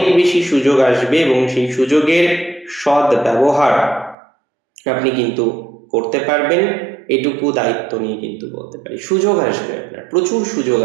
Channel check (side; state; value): left; drops out; at 4.2 s